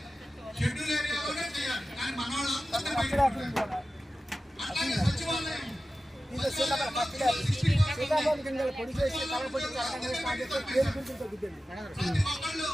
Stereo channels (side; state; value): both; normal; correlation 0.94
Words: సీతాఫలం గింజలు పొడి చేసి కలపొడి పేరు గురించి తగ్గుతుంది.